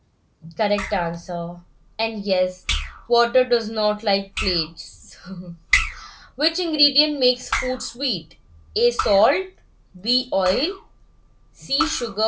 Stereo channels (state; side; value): identical; both; correlation 1.00